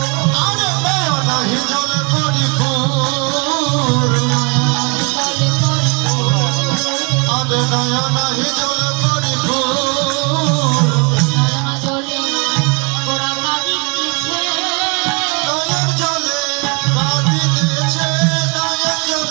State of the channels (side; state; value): left; quieter; 32.7 dB